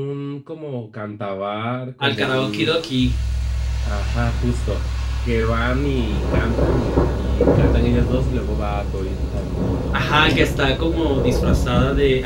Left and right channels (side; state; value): both; identical; correlation 1.00